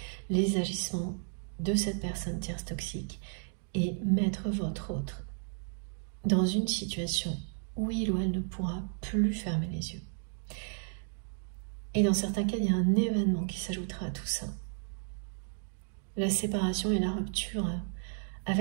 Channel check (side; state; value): left; silent; 56 dB below the other